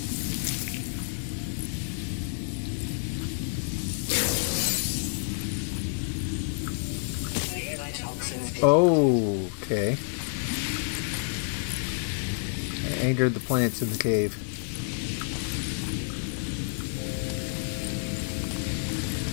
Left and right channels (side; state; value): right; silent; digital silence